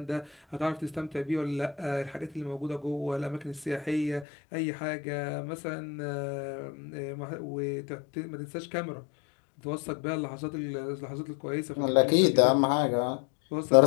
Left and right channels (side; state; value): right; drops out; at 4.2 s